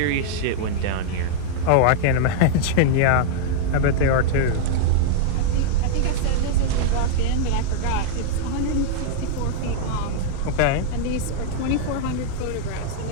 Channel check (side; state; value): both; different; correlation -0.01